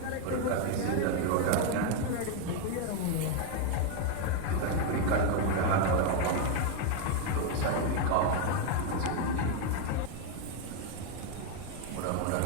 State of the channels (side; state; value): both; different; correlation 0.01